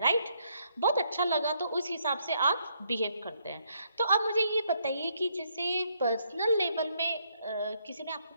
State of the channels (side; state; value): both; inverted; correlation -0.73